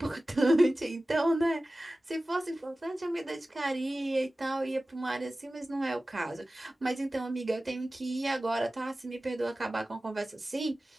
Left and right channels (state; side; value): normal; both; correlation 0.96